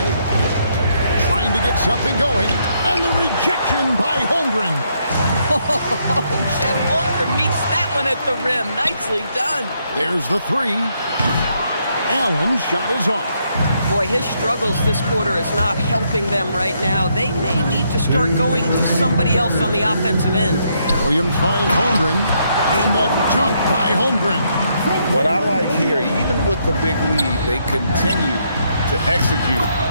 trying to get something going, and the rejection by Holmgren. Chet Holmgren meets that one at the rim. Nicely done. There's the 3. Allen's shot is off. Boy, his struggles this quarter is not helping them right now. They may need to start going to somebody else on the offensive end. Williams finds Holmgren, and the dunk by Holmgren. What I like here, even with the big lead, they continue to execute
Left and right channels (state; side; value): inverted; both; correlation -0.75